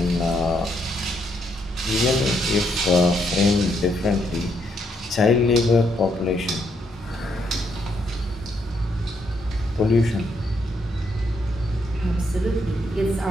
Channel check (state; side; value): normal; both; correlation 0.75